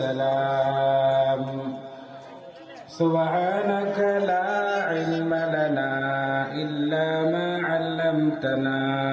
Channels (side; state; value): both; identical; correlation 1.00